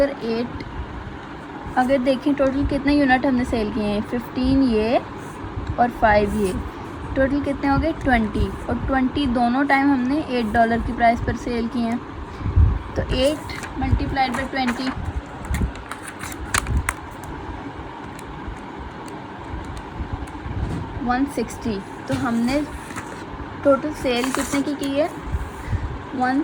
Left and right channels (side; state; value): both; identical; correlation 1.00